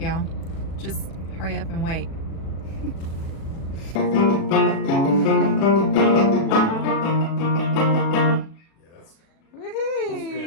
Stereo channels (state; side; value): late; right; 37 ms